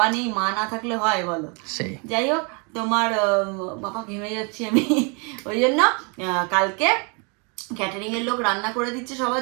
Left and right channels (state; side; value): quieter; left; 33.6 dB